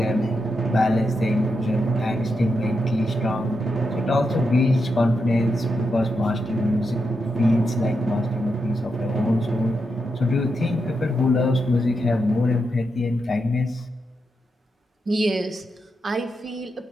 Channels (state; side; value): normal; both; correlation 0.85